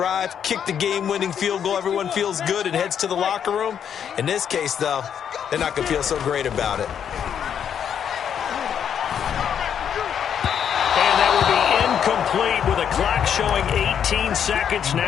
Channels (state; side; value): quieter; right; 8.4 dB